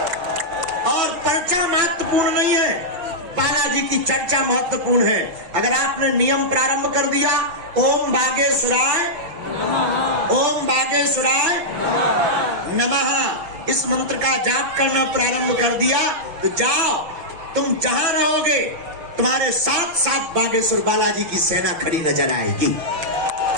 और पर्चा महत्वपूर्ण नहीं है, बालाजी की चर्चा महत्वपूर्ण है। अगर आपने नियम प्रारंभ कर दिया, ओम बागेश्वराय नमः, ओम बागेश्वराय नमः, इस मंत्र का जाप करना प्रारंभ कर दिया, तो जाओ, तुम जहां रहोगे तुम्हारे साथ साथ बागेश्वर बालाजी की सेना खड़ी नजर आएगी।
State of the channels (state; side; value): late; left; 6.0 ms